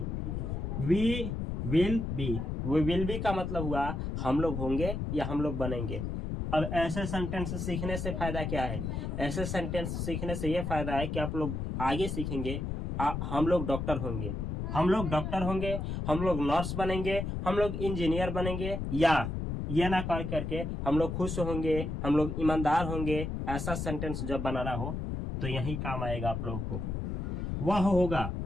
वी विल बी। वो विल बी का मतलब हुआ हम लोग होंगे या हम लोग बनेंगे। अब ऐसे सेंटेंस सीखने से फायदा क्या है? ऐसे सेंटेंस सीखने से ये फायदा है कि आप लोग आगे सीखेंगे, हम लोग डॉक्टर होंगे, हम लोग डॉक्टर होंगे, हम लोग नर्स बनेंगे, हम लोग इंजीनियर बनेंगे, या ये ना कर करके हम लोग खुश होंगे, हम लोग ईमानदार होंगे। ऐसा सेंटेंस जब बनाना हो तो यही काम आएगा आप लोगों को। वह होगा,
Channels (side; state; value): left; noise; rumble, 3 dB below the sound